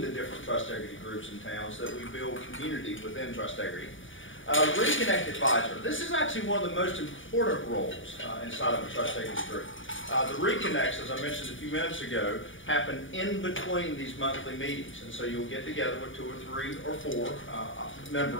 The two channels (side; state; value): right; late; 0.57 ms